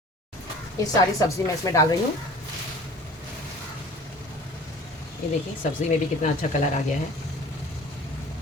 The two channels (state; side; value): normal; both; correlation 0.45